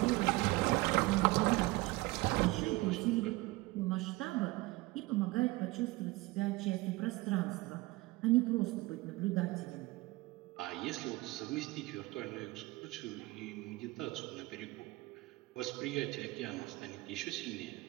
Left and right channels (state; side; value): quieter; left; 20.9 dB